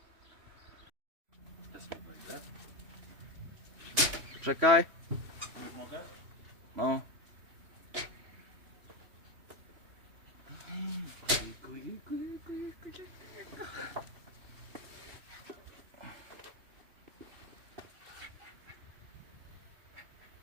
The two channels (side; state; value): left; late; 3.1 ms